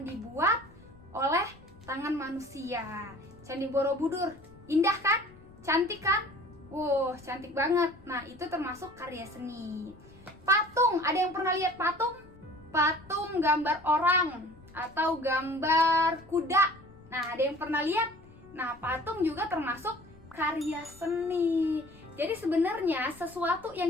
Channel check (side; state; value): left; noise; rumble, 24 dB below the sound